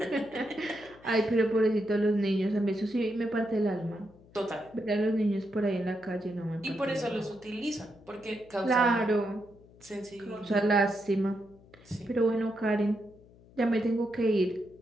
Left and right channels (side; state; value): left; noise; hum, 25 dB below the sound